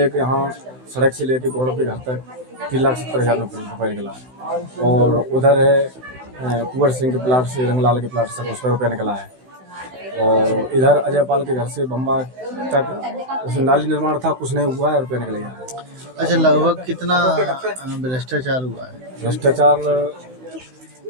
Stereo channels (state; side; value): late; left; 16 ms